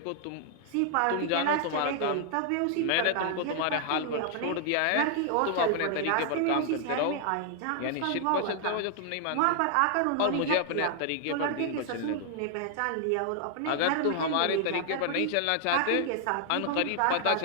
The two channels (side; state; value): both; different; correlation 0.00